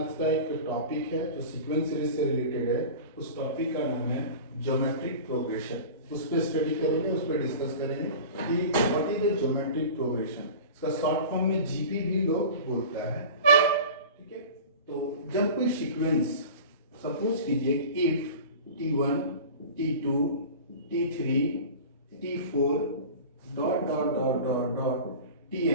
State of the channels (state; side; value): inverted; both; correlation -0.36